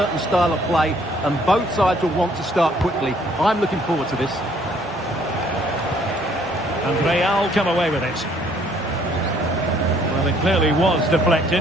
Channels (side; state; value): both; normal; correlation 0.63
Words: style of play, and both sides will want to start quickly. I'm looking forward to this. And Real come away with it. Well, it clearly was